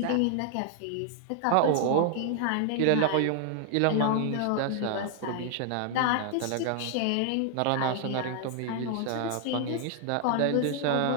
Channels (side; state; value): both; different; correlation 0.00